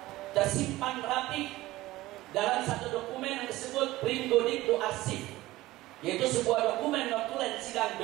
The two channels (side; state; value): left; quieter; 17.7 dB